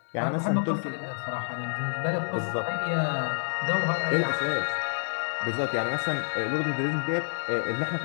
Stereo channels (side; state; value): right; silent; digital silence